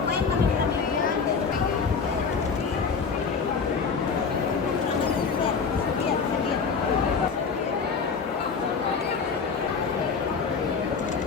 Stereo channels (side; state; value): right; quieter; 5.4 dB